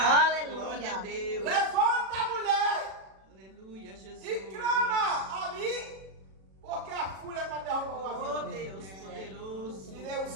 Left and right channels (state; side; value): late; left; 37 ms